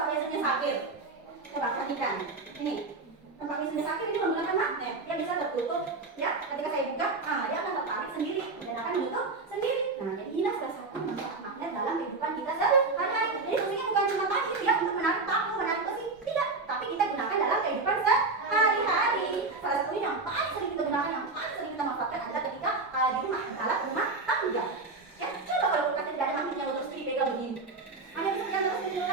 biasanya sakit. Coba perhatikan. Ini tempat biasanya sakit ini menggunakan magnet. Dia bisa tertutup. Ya, ketika saya buka, dia akan tertarik sendiri dan akan menutup sendiri. Nah, jadi inilah salah satu manfaat magnet dalam kehidupan kita sehari-hari. Jadi fungsinya bukan cuma tadi ya untuk menarik paku, menarik besi, tidak. Tapi kita gunakan dalam kehidupan sehari-hari. Salah satunya yang paling sering kita gunakan, yang paling sering kita manfaatkan adalah ketika di rumah, alat rumah tangga. Ya, coba kalau kulkasnya tidak ada magnetnya terus dipegang begini. Hanya bisa pegang terus di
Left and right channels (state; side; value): quieter; left; 3.7 dB